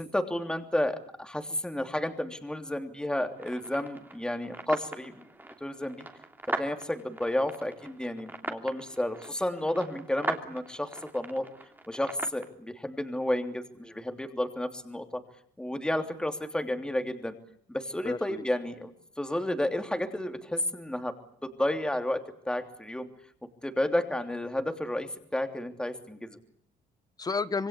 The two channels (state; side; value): normal; both; correlation 0.86